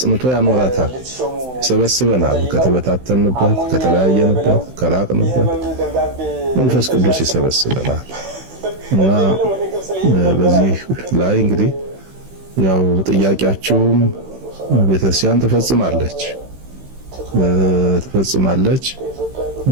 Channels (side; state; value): left; late; 16 ms